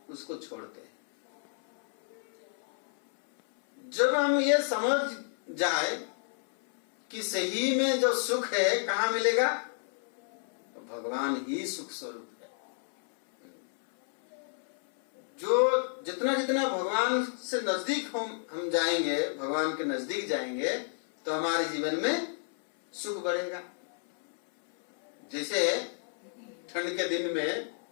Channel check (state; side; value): silent; right; 57 dB below the other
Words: उसको छोड़ते हैं। जब हम ये समझ जाए कि सही में जो सुख है कहाँ मिलेगा, तो भगवान ही सुख स्वरूप है। जो जितना जितना भगवान से नजदीक हम जाएंगे, भगवान के नजदीक जाएंगे, तो हमारे जीवन में सुख बढ़ेगा। जैसे ठंड के दिन में